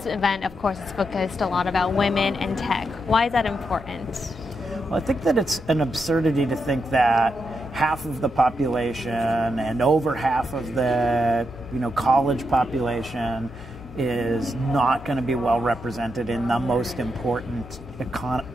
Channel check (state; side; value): noise; left; hum, 17 dB below the sound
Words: event, of course, is focused a lot about women and tech. Why is that important? Well, I think that it's an absurdity to think that half of the population and over half of the college population is not going to be well represented in the most important